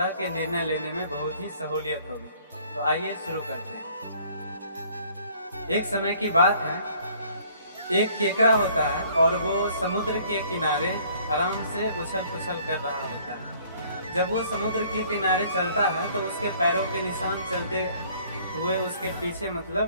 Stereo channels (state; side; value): inverted; both; correlation -0.58